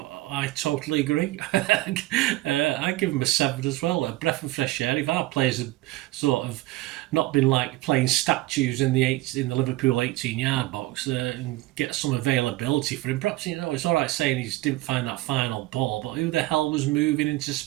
I totally agree. I give him a 7 as well. A breath of fresh air. If our players had sort of not been like playing statues in the Liverpool 18-yard box and get some availability for him. Perhaps it's all right saying he didn't find that final ball, but who the hell was moving into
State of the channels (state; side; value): quieter; left; 18.3 dB